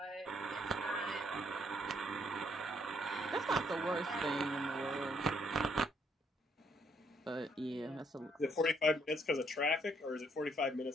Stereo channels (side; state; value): both; normal; correlation 0.70